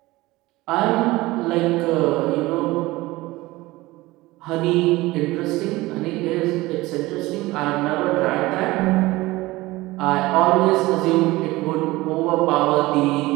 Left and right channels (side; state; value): left; quieter; 19.6 dB